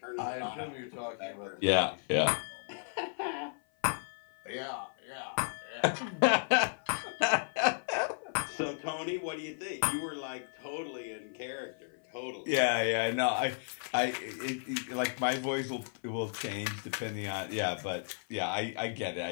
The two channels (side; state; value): right; silent; 55 dB below the other